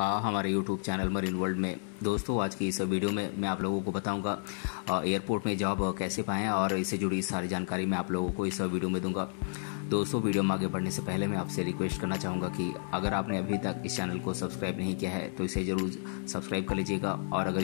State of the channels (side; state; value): right; silent; digital silence